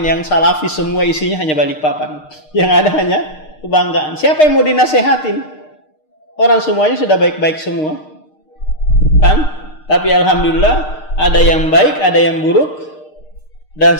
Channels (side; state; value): right; late; 6.5 ms